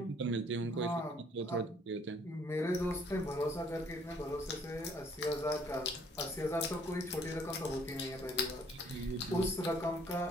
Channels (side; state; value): both; normal; correlation 0.62